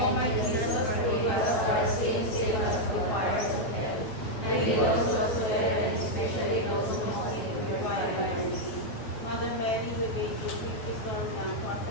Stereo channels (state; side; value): late; right; 9.3 ms